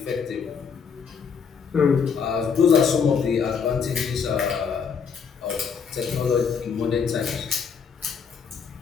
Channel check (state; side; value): quieter; right; 6.3 dB